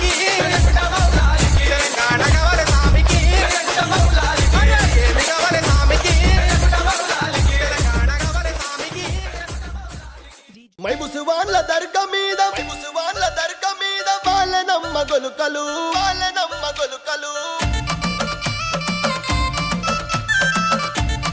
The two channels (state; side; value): identical; both; correlation 1.00